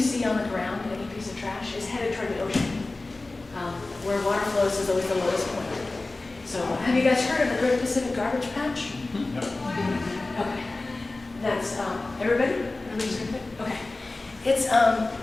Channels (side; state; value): right; quieter; 3.2 dB